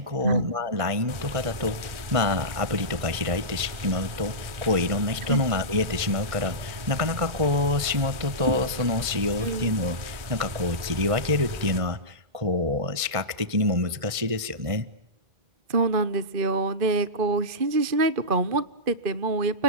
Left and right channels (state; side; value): late; left; 1.6 ms